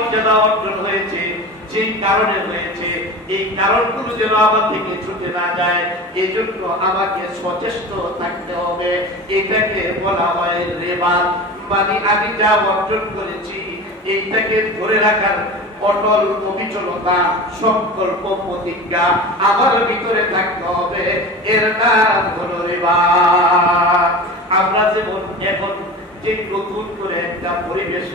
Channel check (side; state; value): both; normal; correlation 0.32